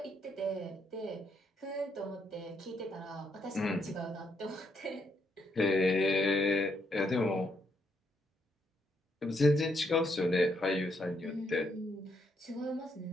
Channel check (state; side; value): normal; both; correlation 0.76